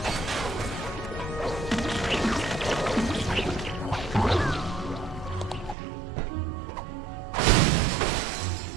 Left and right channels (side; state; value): left; drops out; at 5.8 s